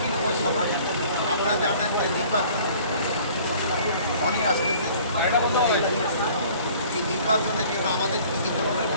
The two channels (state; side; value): inverted; both; correlation -0.51